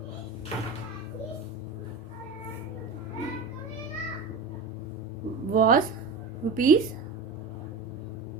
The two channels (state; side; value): quieter; left; 4.1 dB